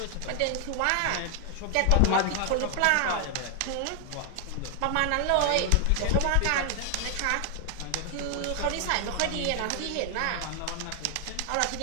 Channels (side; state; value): both; different; correlation 0.00